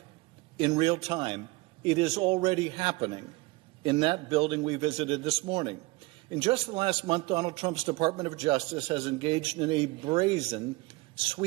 in real time. It is already happening in that building we visited this morning. In just the last month, Donald Trump's Department of Justice has engaged in a brazen,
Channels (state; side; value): quieter; left; 23.1 dB